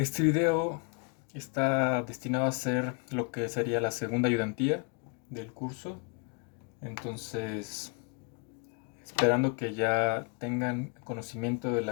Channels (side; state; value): right; quieter; 34.1 dB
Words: video está destinado a ser lo que sería la segunda ayudantía del curso. Entonces, esperando que ya tengan conocimiento de